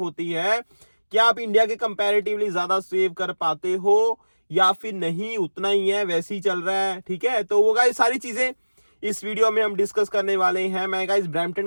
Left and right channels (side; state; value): both; inverted; correlation -1.00